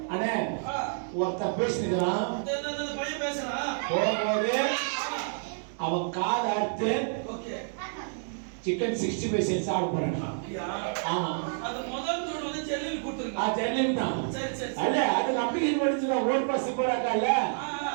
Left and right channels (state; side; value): silent; left; digital silence